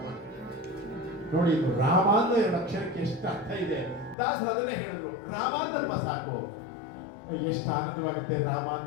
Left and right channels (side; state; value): right; drops out; at 4.2 s